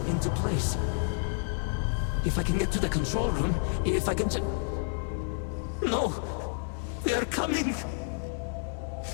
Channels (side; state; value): right; silent; digital silence